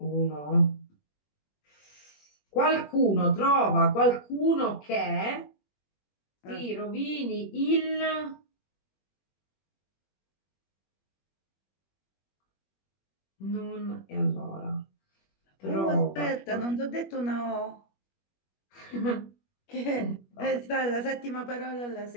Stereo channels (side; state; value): right; late; 21 ms